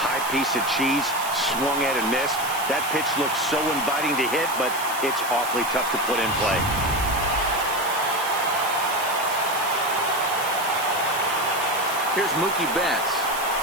piece of cheese, swung at and missed. That pitch looks so inviting to hit, but it's awfully tough to put in play. Here's Mookie Betts.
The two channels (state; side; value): noise; right; hiss, 9 dB below the sound